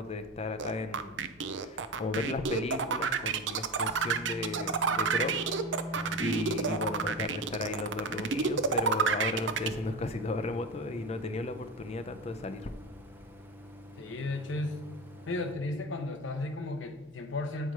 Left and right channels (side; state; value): both; normal; correlation 0.25